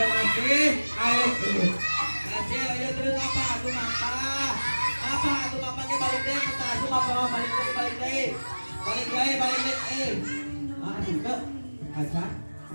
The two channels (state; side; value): inverted; both; correlation -1.00